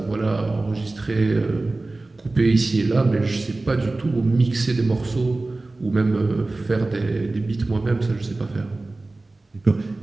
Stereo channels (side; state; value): left; quieter; 3.1 dB